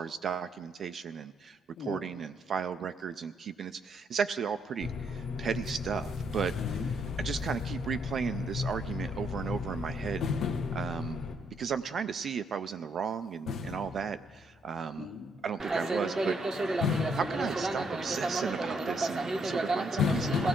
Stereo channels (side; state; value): both; normal; correlation 0.72